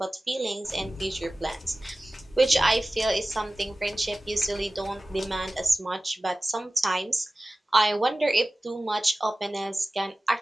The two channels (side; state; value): both; normal; correlation 0.97